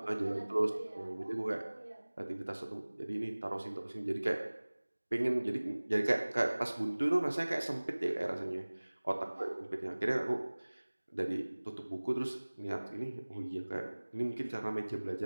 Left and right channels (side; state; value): both; inverted; correlation -1.00